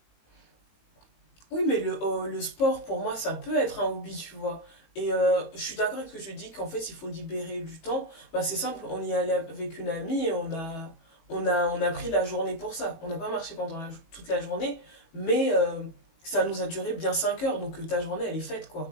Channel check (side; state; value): right; late; 18 ms